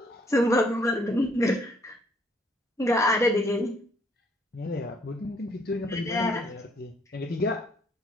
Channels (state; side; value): normal; both; correlation 0.66